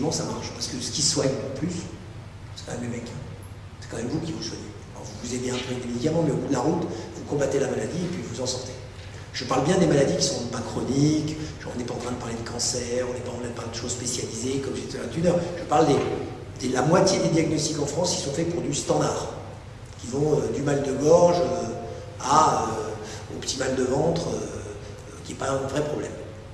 ça marche, parce que ce qui soigne le plus, c'est quand même les mecs. C'est quand même vous qui vous soignez. Alors vous vous aidez un peu avec des médicaments, mais au bout de la route, vous combattez la maladie et puis vous en sortez. Je parle bien des maladies qui ne sont pas chroniques, on n'est pas en train de parler de cancer, on n'est pas en train de parler de choses spécialisées comme j'étais là d'une heure. Je parle de la moitié des diagnostics en France qui sont faits pour du standard, qui vont du mal de gorge au petit mal de ventre, qui n'est pas un vrai problème.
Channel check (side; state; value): both; identical; correlation 1.00